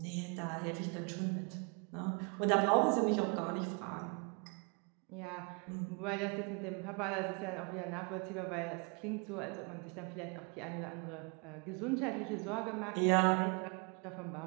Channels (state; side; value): quieter; left; 34.1 dB